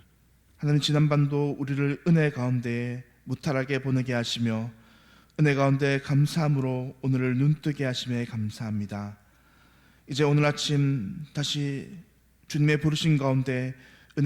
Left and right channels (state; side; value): identical; both; correlation 1.00